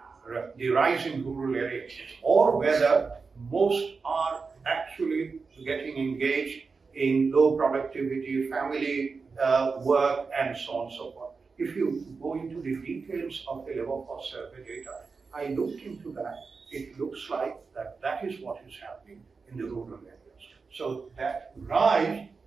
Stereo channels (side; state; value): left; quieter; 4.7 dB